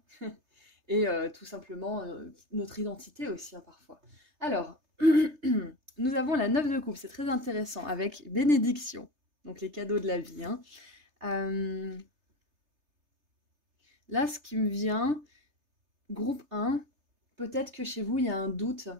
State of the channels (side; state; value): left; late; 3.3 ms